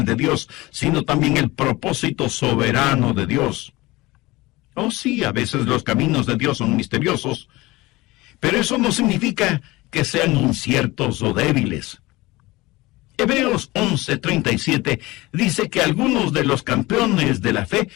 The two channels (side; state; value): right; quieter; 20.6 dB